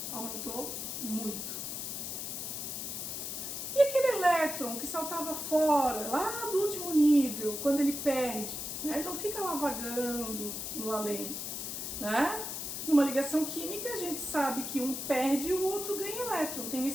Aumentou muito. E aquele elétron que saltava fora, lá do último nível, quando ele perde, né? Ele não fica lá vagando no além, né? Numa ligação química, a gente sabe que um perde e o outro ganha elétron, tem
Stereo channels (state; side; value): noise; left; hiss, 5 dB below the sound